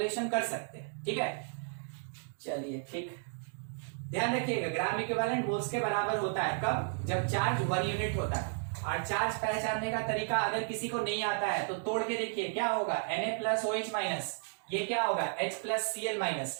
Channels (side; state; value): left; silent; 55 dB below the other